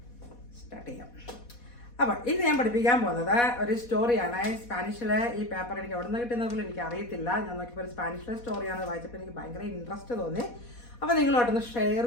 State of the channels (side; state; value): right; late; 4.1 ms